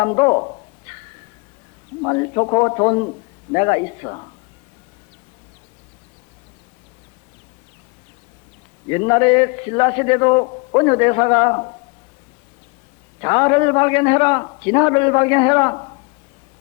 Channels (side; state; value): right; quieter; 30.2 dB